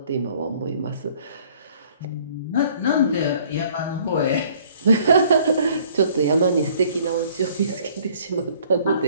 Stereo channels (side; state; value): both; inverted; correlation -0.57